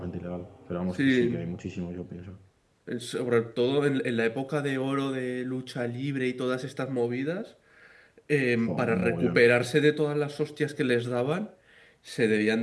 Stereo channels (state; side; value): identical; both; correlation 1.00